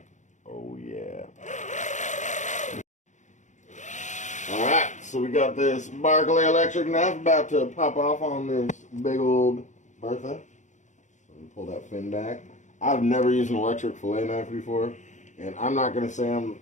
Oh, yeah. Alright, so we got this Berkley electric knife about to pop off on this big old Bertha. Let me pull that fin back. I've never used an electric fillet knife before, and I'm not going to say I'm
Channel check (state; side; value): late; right; 0.35 ms